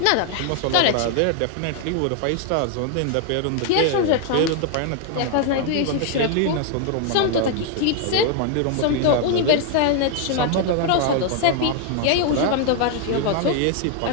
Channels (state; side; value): different; both; correlation 0.00